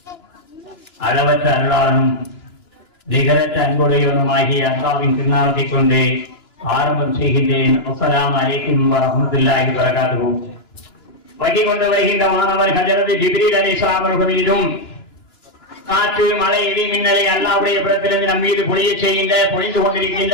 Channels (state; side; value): late; right; 2.9 ms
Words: அளவற்ற அருளாளனும் நிகரற்ற அன்புடையவனுமாகிய அல்லாஹ்வின் திருநாமத்தை கொண்டு ஆரம்பம் செய்கின்றேன். அஸ்ஸலாமு அலைக்கும் வரஹ்மத்துல்லாஹி வபரகாத்துஹு. வகி கொண்டு வருகின்ற மாணவர் ஹஜரத் ஜிப்ரீல் அலைஹிஸ்ஸலாம் அவர்கள் மீதும் காற்று மழை இடி மின்னலை அல்லாஹ்வுடைய புறத்திலிருந்து நம் மீது பொழிந்து கொண்டிருக்கின்ற